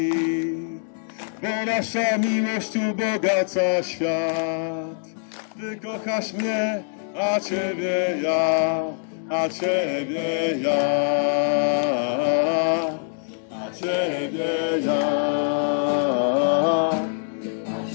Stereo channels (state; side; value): silent; right; digital silence